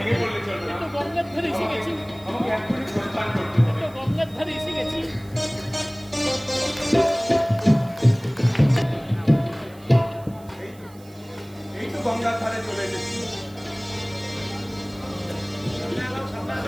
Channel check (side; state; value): right; noise; hiss, 26 dB below the sound